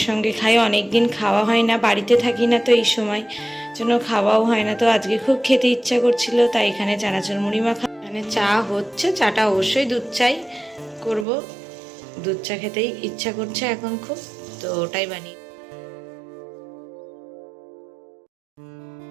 সঙ্গে খাই, অনেক দিন খাওয়া হয় না, বাড়িতে থাকি না তো এই সময় জন্য খাওয়াও হয় না। তো আজকে খুব খেতে ইচ্ছা করছিল, তাই এখানে চানাচুর মুড়ি মাখা। এখানে চা হচ্ছে, চাটা অবশ্যই দুধ চাই করব। দুধ চা খেতেই ইচ্ছা করছে এখন খুব, তো ওটাই বানিয়ে।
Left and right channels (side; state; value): left; drops out; at 11.2 s